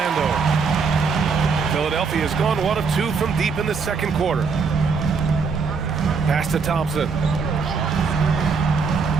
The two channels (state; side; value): quieter; left; 5.2 dB